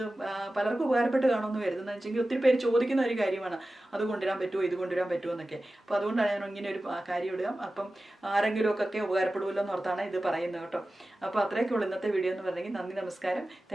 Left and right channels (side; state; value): both; normal; correlation 0.95